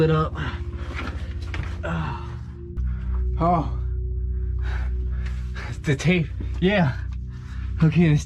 up. Oh, the tape. Yeah. Okay, this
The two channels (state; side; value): identical; both; correlation 1.00